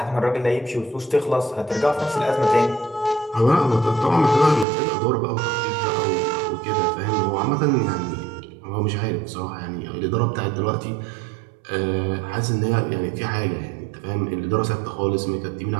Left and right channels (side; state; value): left; drops out; at 4.7 s